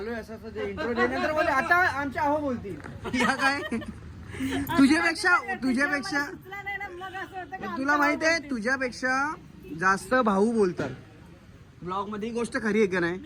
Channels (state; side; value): identical; both; correlation 1.00